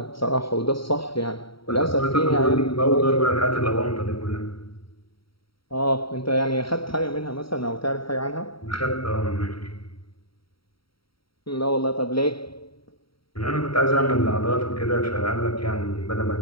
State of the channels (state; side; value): late; right; 0.75 ms